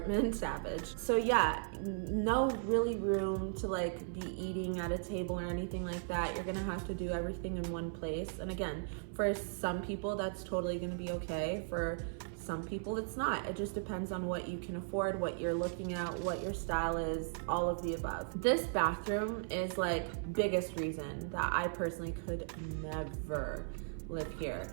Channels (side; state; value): left; silent; 53 dB below the other